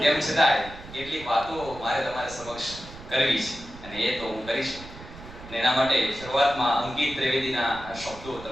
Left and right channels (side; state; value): right; noise; rumble, 16 dB below the sound